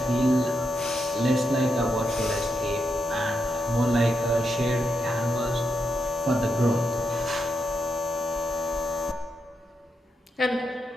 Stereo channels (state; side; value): normal; both; correlation 0.83